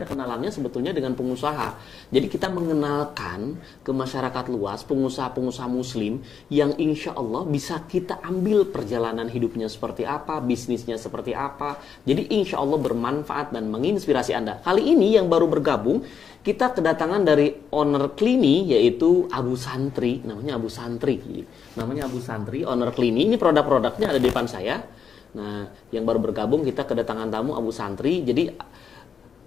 kenalannya sebetulnya dengan pengusaha. Jadi kita mengenalkan ke masyarakat luas pengusaha-pengusaha muslim yang insya Allah bisa kita ambil perjalanan hidupnya seperti apa, bisnisnya seperti apa. Jadi insya Allah bermanfaat dan menginspirasi Anda. Kali ini yang baru bergabung, kita kedatangan dari owner Klini, yaitu Abu Santri. Namanya Abu Santri, owner Klini. Ini produk-produknya ada di depan saya. Nah, yang baru bergabung kita kedatangan tamu Abu Santri. Jadi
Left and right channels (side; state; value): right; quieter; 6.9 dB